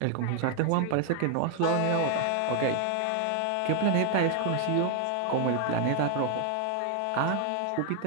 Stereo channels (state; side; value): different; both; correlation 0.00